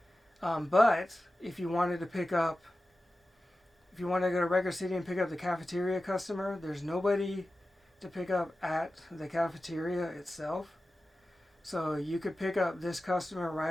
But if you wanted to pick up, if you want to go to Record City and pick up the cafeteria customer, there's nobody to pick up at the cafeteria itself. So you could pick up this customer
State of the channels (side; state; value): both; normal; correlation 0.94